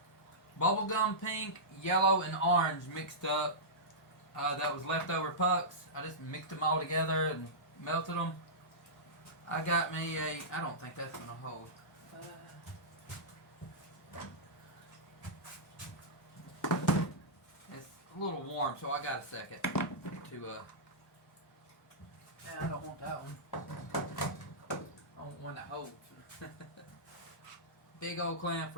bubblegum pink, yellow, and orange mixed up. That was leftover pucks. I just mixed them all together and melted them. I got me a, I don't think that's going to hold. It's a little warm, so I got a second to, I don't want that one. I want one that holds. Big old clamp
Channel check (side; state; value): both; normal; correlation -0.15